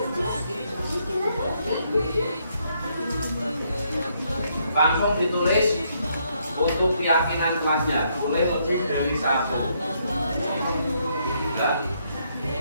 langsung ditulis untuk keyakinan kelasnya, boleh lebih dari 1. Ya.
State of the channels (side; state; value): both; inverted; correlation -0.73